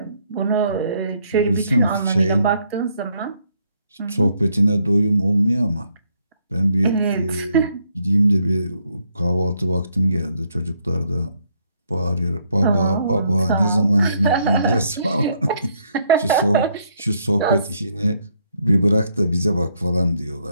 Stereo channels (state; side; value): inverted; both; correlation -0.71